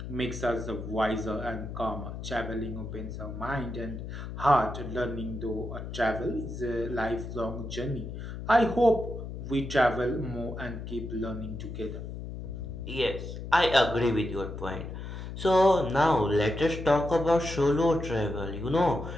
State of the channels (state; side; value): noise; left; hum, 8 dB below the sound